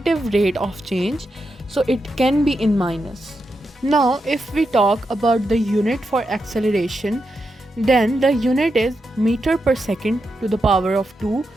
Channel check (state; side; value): normal; both; correlation 0.86